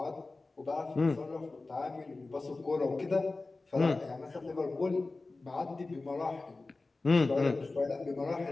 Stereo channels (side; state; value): right; quieter; 3.4 dB